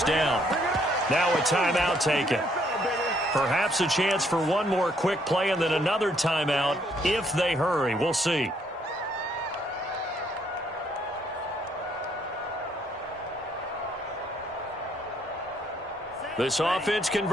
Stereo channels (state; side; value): normal; both; correlation 0.68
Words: down. Now a timeout taken. Perhaps a chance for one more quick play and then another timeout if they hurry. We'll see. This offense